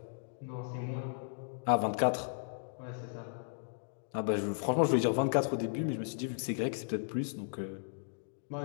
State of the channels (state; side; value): silent; right; digital silence